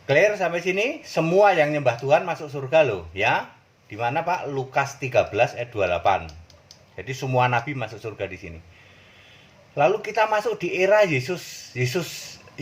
Clear sampai sini? Semua yang nyembah Tuhan masuk surga loh, ya. Di mana Pak? Lukas 13 ayat 28. Jadi semua nabi masuk surga di sini. Lalu kita masuk di era Yesus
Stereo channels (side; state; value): both; identical; correlation 1.00